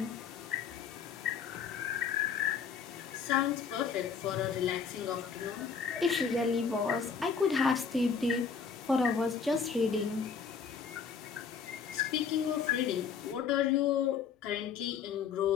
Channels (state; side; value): quieter; right; 6.2 dB